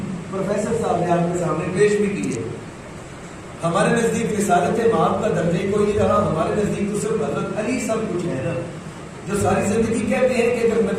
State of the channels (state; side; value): identical; both; correlation 1.00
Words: پروفیسر صاحب نے آپ کے سامنے پیش بھی کیے۔ ہمارے نزدیک رسالت مآب کا درجہ کوئی نہیں رہا، ہمارے نزدیک تو صرف حضرت علی سب کچھ ہے نا، جو ساری زندگی کہتے ہیں کہ اگر